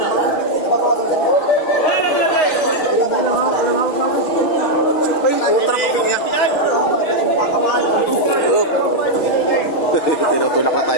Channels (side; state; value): right; late; 6.4 ms